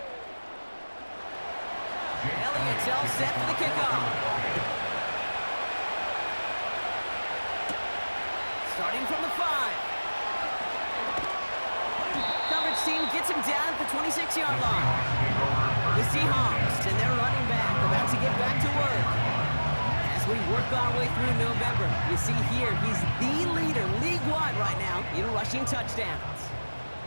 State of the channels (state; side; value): inverted; both; correlation -1.00